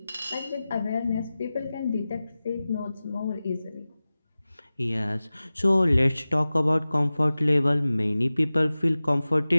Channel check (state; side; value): inverted; both; correlation -0.97